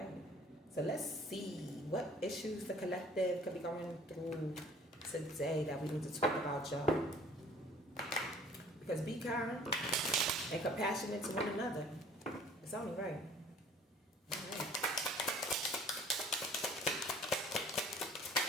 So let's see what issues the collective could be going through today that we need to talk about, y'all. Because be kind and compassionate to one another. It's only right.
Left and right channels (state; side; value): normal; both; correlation 0.52